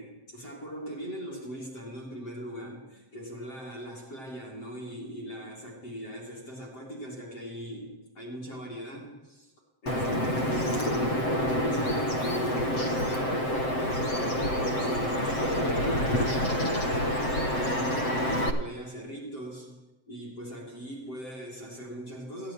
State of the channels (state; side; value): late; right; 7.7 ms